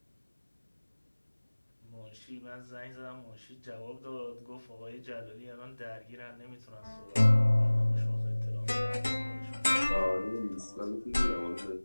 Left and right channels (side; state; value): both; inverted; correlation -1.00